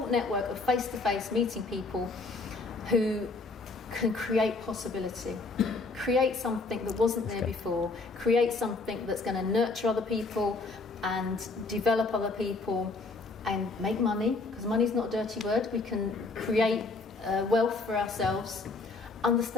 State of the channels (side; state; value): right; quieter; 3.6 dB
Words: network of face-to-face meeting people who can create possibility, create something that wasn't there before, create something that's going to nurture other people and develop other people and make money, because money's not a dirty word. We can create wealth for ourselves,